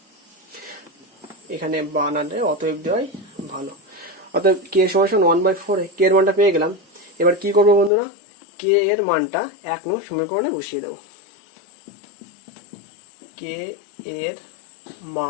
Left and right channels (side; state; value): right; drops out; at 7.9 s